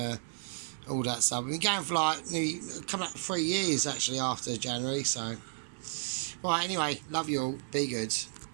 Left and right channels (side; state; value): left; silent; 56 dB below the other